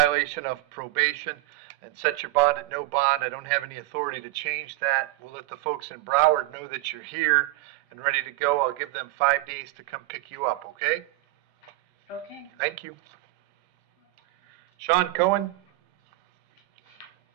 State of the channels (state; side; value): quieter; left; 18.6 dB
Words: of probation and set your bond at no bond. I don't have any authority to change that. We'll let the folks in Broward know that you're here and ready to go. I'll give them 5 days to come pick you up, okay? Okay. Thank you. Sean Cohen.